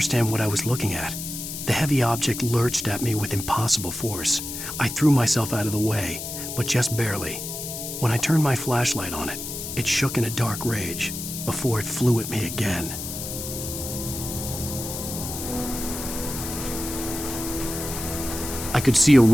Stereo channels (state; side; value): noise; left; hiss, 7 dB below the sound